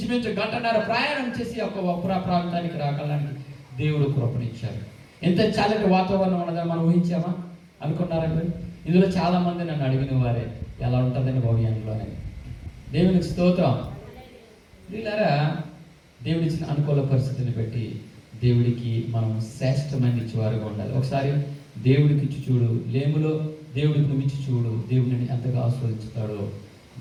1.5 గంట ప్రయాణం చేసి ఒక ప్రాంతానికి రాగలడానికి దేవుడు కృపణించారు. ఎంత చల్లటి వాతావరణం ఉన్నదని మనం ఊహించామా? అనుకున్నారా మీరు? ఇందులో చాలా మంది నన్ను అడిగిన వారే, ఎలా ఉంటుందని భవిష్యంలోనే. దేవునికి స్తోత్రం. వీళ్ళారా, దేవుడిచ్చిన అనుకూల పరిస్థితిని బట్టి దేవుడికి మనం శ్రేష్టమైన ఇచ్చేవారుగా ఉండాలి. ఒకసారి దేవుడికి ఇచ్చి చూడు, లేములో దేవుడికి నువ్వు ఇచ్చి చూడు, దేవుడిని ఎంతగా ఆస్వాదించుతాడో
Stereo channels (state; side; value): identical; both; correlation 1.00